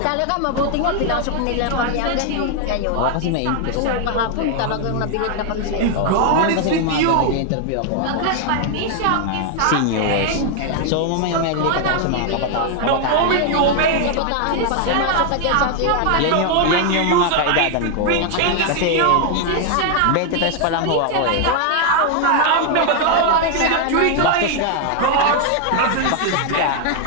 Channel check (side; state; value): both; different; correlation 0.00